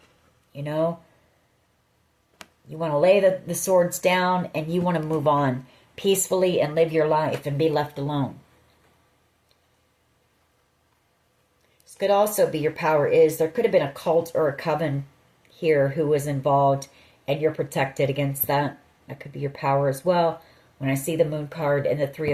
You know, you want to lay the swords down and you want to move on peacefully and live your life and be left alone. This could also be your power is there could have been a cult or a coven here who was involved and you're protected against that. That could be your power as well. When I see the Moon card and the Three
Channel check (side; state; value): both; identical; correlation 1.00